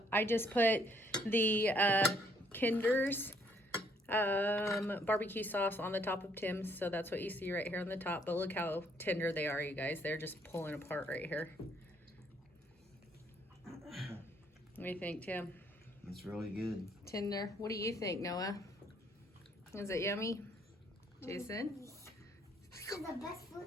I just put the Kinder's barbecue sauce on the top of Tim's. So that's what you see right here on the top. But look how tender they are, you guys. They're just pulling apart right here. What do you think, Tim? It's really good. Tender. What do you think, Noah? Is it yummy? Jason? This is the best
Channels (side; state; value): both; normal; correlation 0.67